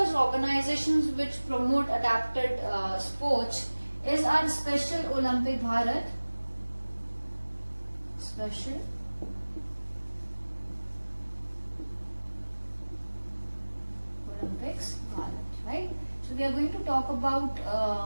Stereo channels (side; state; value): both; inverted; correlation -1.00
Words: organizations which promote adapted sports is our Special Olympic Bharat. Special Olympics Bharat, right? So we are going to talk about